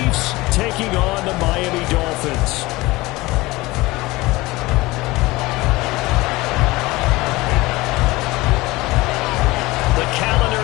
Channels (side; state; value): right; quieter; 20.7 dB